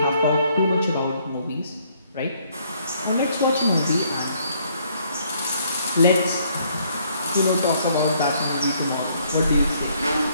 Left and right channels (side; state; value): both; inverted; correlation -0.66